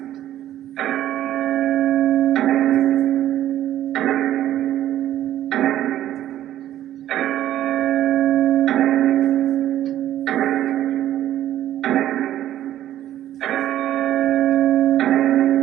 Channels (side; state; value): left; quieter; 12.5 dB